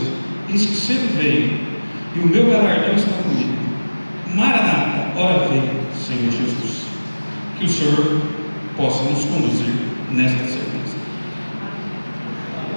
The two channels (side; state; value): both; inverted; correlation -1.00